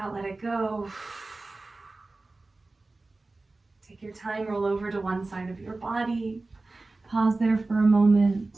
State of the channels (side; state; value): left; quieter; 3.3 dB